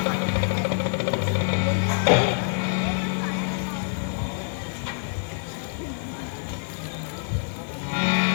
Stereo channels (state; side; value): silent; right; digital silence